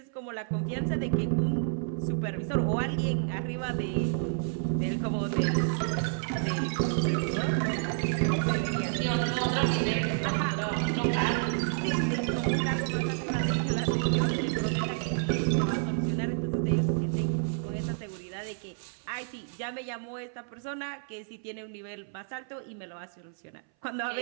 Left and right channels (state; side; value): silent; left; 58 dB below the other